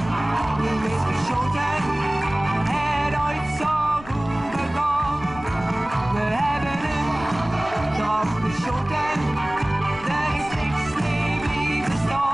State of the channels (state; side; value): noise; left; rumble, 16 dB below the sound